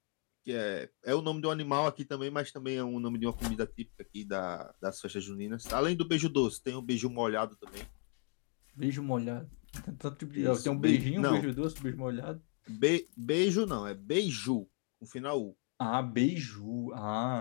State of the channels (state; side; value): quieter; right; 39.4 dB